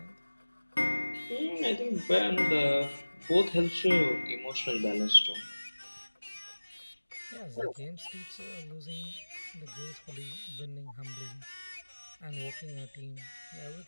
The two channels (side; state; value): both; inverted; correlation -1.00